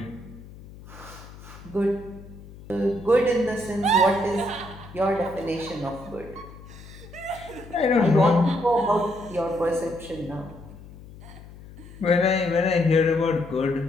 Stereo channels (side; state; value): left; noise; hum, 18 dB below the sound